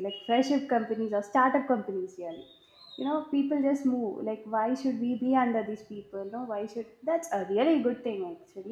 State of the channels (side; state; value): both; identical; correlation 1.00